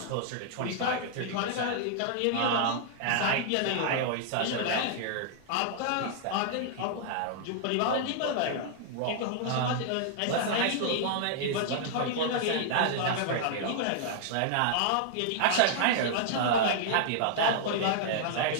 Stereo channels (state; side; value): different; both; correlation -0.01